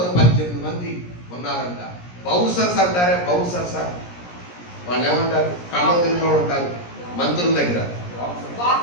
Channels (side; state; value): right; late; 17 ms